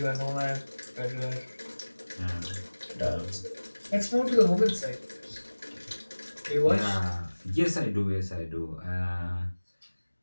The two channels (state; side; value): inverted; both; correlation -1.00